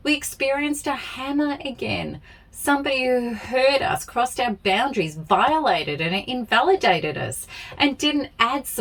we experienced a hammer again. Somebody who hurt us, crossed our boundaries, violated and invalidated us, and didn't add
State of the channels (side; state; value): both; identical; correlation 1.00